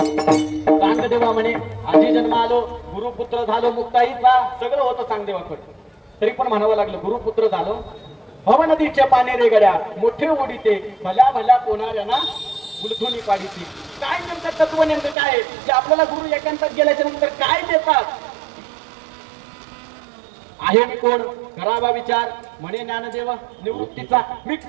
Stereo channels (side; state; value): left; drops out; at 15.2 s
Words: चांगदेवा म्हणे आजी जन्म आलो, गुरुपुत्र झालो मुक्ताईचा. सगळं होतं चांगदेवाकडे. तरी पण म्हणावं लागलं गुरुपुत्र झालो. भव नदीच्या पाने रे गड्या मोठे ओढीते, भल्या भल्या कोणाऱ्यांना गुलथुनी पाडीची. काय नेमकं तत्व नेमकं काय जे आपल्याला गुरु एकांतात गेल्याच्या नंतर काय देतात? आहे मी कोण? करावा विचार. म्हणे ज्ञानदेवा निवृत्तीचा मी